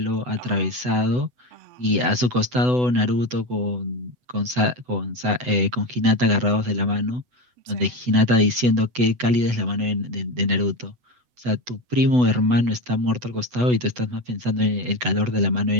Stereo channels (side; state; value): left; late; 8.0 ms